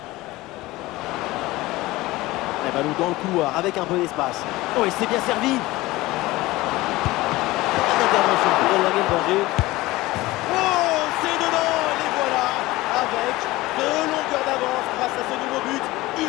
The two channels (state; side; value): quieter; right; 19.2 dB